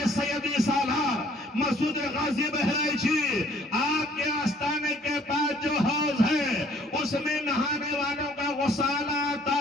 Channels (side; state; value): both; normal; correlation 0.59